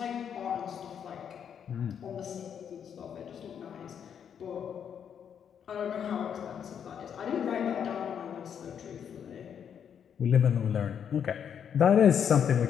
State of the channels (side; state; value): right; quieter; 8.1 dB